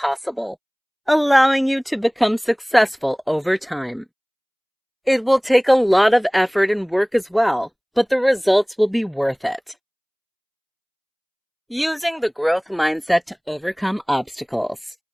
allowing you to become successful over time. It will take a lot of effort and work as well, but the results will be worth it. Using the growth mindset to overcome obstacles.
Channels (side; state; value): both; identical; correlation 1.00